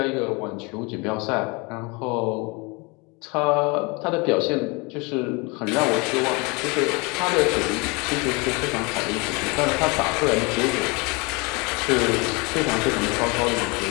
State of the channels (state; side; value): quieter; right; 28.2 dB